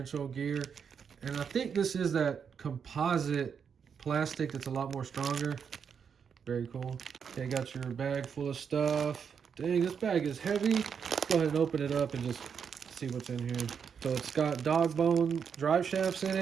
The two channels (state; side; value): quieter; left; 6.9 dB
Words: gear, and I think this is that composite plastic that's a lot more stronger. Very cool. Okay, got your bag full of stuff. Dang, this bag is heavy. Let's go ahead and open it up and just see what's in here. So it's got dog bone drive shafts in